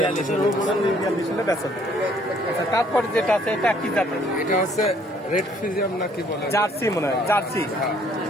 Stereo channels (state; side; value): normal; both; correlation 0.62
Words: আচ্ছা, তারপরে যেটা আছে এটা কি জাতের? এটা হচ্ছে রেড ফিজিয়াম নাকি বলে, জার্সি মনে হয়, জার্সি।